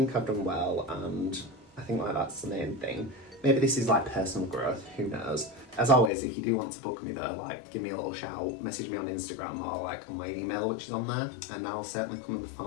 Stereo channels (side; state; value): right; drops out; at 6.1 s